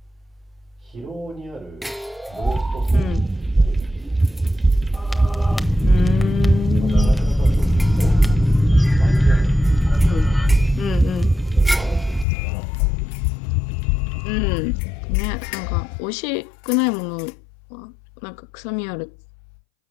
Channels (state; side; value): drops out; right; at 12.2 s